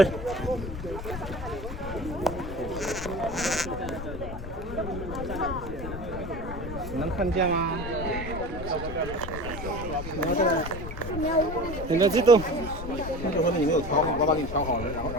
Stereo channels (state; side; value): noise; left; rumble, 8 dB below the sound